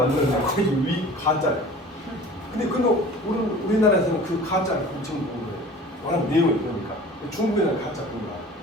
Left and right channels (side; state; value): both; normal; correlation 0.43